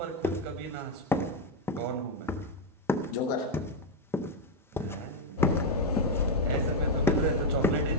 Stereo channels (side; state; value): both; normal; correlation 0.05